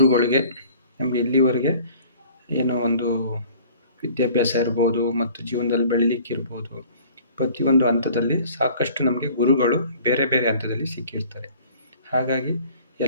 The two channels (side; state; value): both; inverted; correlation -0.50